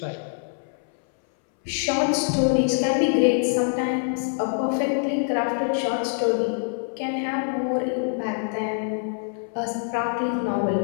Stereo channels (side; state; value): right; silent; 62 dB below the other